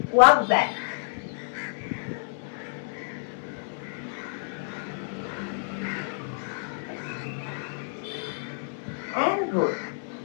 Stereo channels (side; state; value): right; silent; digital silence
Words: ওয়াক ব্যাক। And roll.